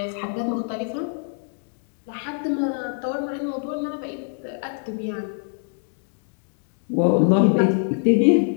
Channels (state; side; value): silent; right; digital silence